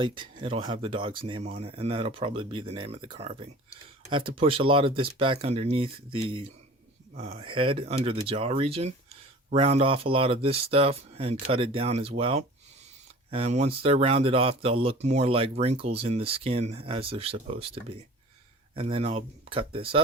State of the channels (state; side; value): normal; both; correlation 0.42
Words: it'll have the dog's name on it, and that'll probably be the name of the carving. I have to push a lot of this back underneath the head, under the jaw region, round off a lot of this stuff and cut it down as well. And once they're rounded off, they'll look more like wrinkles in the skin as they're supposed to be. And then I'll cut this